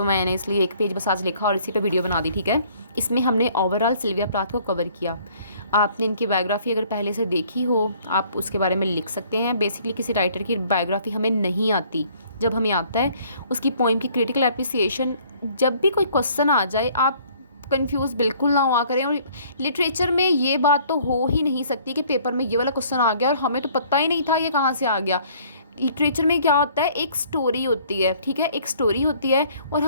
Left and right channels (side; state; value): both; inverted; correlation -0.58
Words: मैंने इसलिए एक पेज बस आज लिखा और इसी पे वीडियो बना दी, ठीक है। इसमें हमने ओवरऑल सिल्विया प्लाथ को कवर किया। आपने इनकी बायोग्राफी अगर पहले से देखी हो, आप उसके बारे में लिख सकते हैं। बेसिकली किसी राइटर की बायोग्राफी हमें नहीं आती, जब हमें आता है उसकी पोइम की क्रिटिकल एप्रिसिएशन। जब भी कोई क्वेश्चन आ जाए, आप कंफ्यूज बिल्कुल ना हुआ करें। और लिटरेचर में ये बात तो हो ही नहीं सकती कि पेपर में ये वाला क्वेश्चन आ गया और हमें तो पता ही नहीं था ये कहाँ से आ गया। लिटरेचर में क्या होता है, एक स्टोरी होती है, ठीक है, एक स्टोरी होती है और